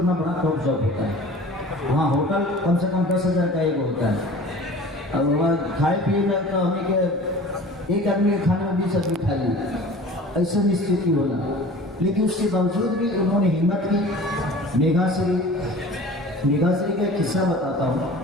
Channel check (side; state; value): both; normal; correlation 0.42